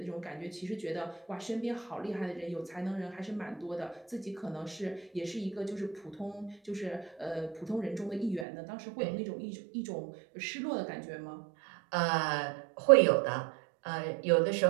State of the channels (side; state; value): left; drops out; at 8.5 s